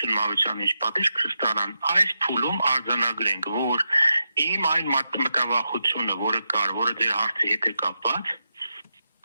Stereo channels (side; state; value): both; inverted; correlation -0.87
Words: Մավությանը ինչ պատիժ կստանան, այս փուլում արձանագրենք, որ իմ այն մտավախությունը, որը կար, որը ձեր հարցի հետ է կապված,